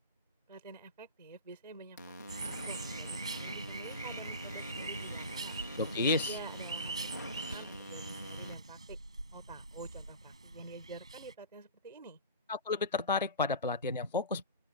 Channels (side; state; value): both; inverted; correlation -0.32